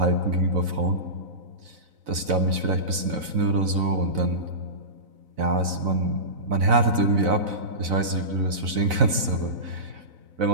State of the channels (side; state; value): left; late; 4.0 ms